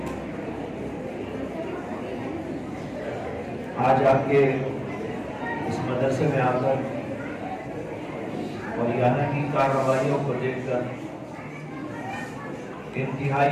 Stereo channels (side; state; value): both; identical; correlation 1.00